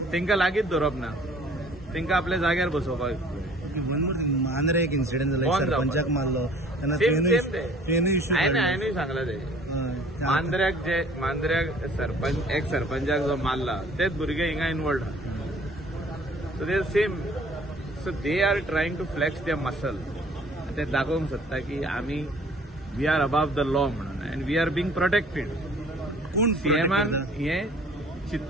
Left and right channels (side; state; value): both; normal; correlation 0.53